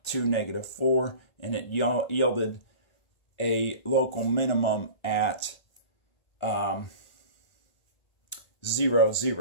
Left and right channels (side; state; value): right; late; 1.8 ms